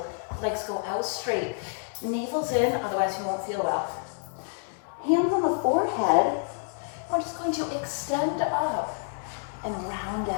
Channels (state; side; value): silent; right; 59 dB below the other